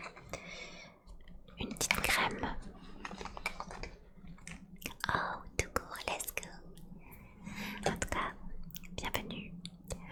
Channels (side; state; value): both; identical; correlation 1.00